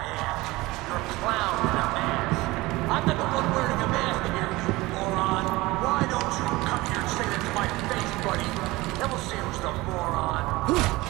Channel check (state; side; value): quieter; left; 20.4 dB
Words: ass. You're a clown in a mask. I'm not the one wearing a mask here, you moron. Why don't you come here and say that to my face, buddy? Then we'll see who's the moron.